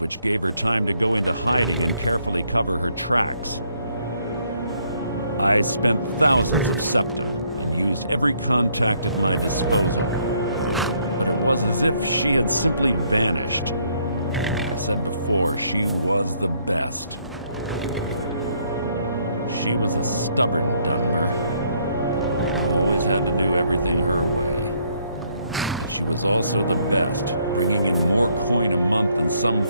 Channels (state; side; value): inverted; both; correlation -0.69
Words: gave her time to go into hiding and carefully cover her tracks. I spent thousands of septum and used every contact at my disposal. But it was as if she had simply vanished. Like I said before, she was the best. She was a stubborn Dunmer. Always had to do everything her way. But she was also the best, bringing in more coin a month than some